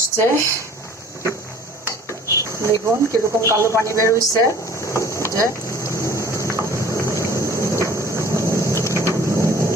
দেখুন কিরকম কালো পানি বের হয়েছে। যে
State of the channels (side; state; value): both; normal; correlation 0.50